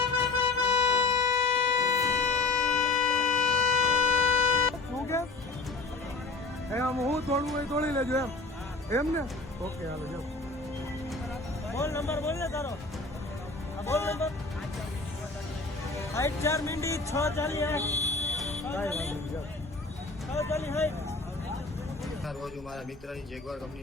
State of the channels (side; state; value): right; quieter; 3.6 dB